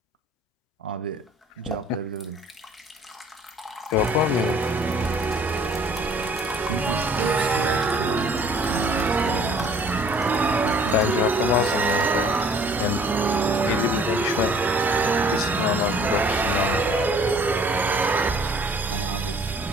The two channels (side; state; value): both; normal; correlation 0.54